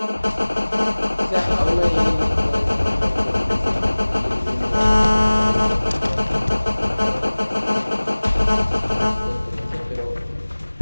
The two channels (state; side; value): inverted; both; correlation -1.00